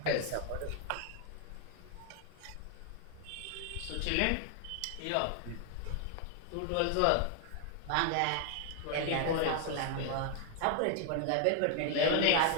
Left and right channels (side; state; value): both; different; correlation 0.00